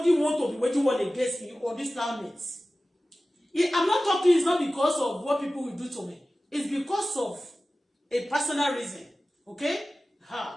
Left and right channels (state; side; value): normal; both; correlation 0.96